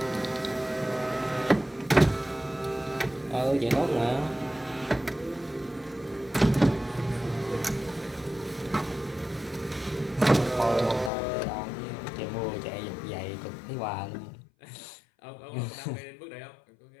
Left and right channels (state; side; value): drops out; right; at 11.1 s